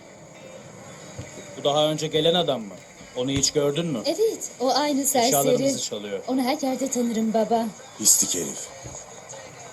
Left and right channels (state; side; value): identical; both; correlation 1.00